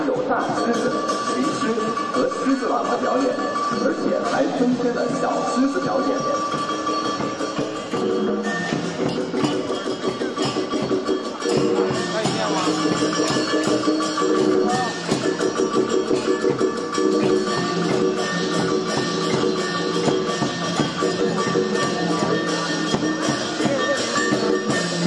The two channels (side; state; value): both; identical; correlation 1.00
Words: 有大狮子、灵狮和狮子喇嘛表演，而且还增添了小狮子表演。